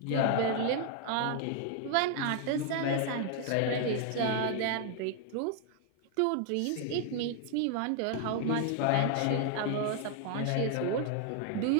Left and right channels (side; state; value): both; different; correlation 0.00